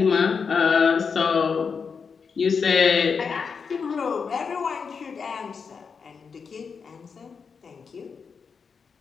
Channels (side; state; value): right; quieter; 5.7 dB